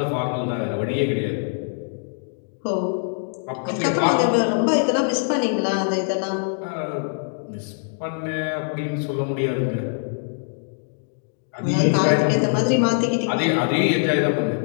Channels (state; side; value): silent; right; digital silence